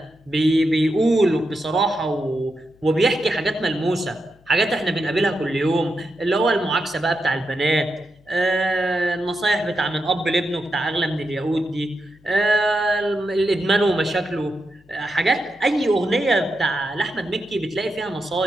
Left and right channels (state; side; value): noise; left; hum, 30 dB below the sound